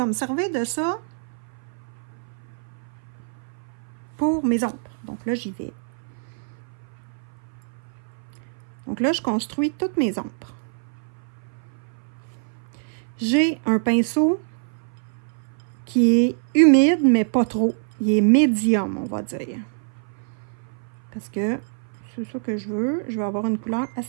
me servir de ça pour mes ombres. Donc là, j'y vais. Donc là, je construis toutes mes ombres. J'ai un pinceau qui est humide, mais pas trop. Il est médium, on va dire. Parce que c'est ça que je veux. Je veux avoir une couleur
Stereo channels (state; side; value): silent; left; 58 dB below the other